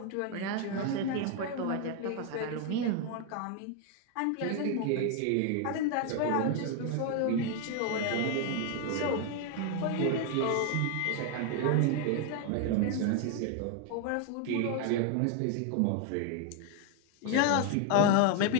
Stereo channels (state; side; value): different; both; correlation 0.01